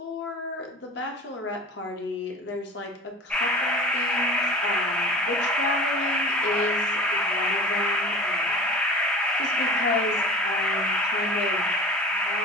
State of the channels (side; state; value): both; normal; correlation 0.38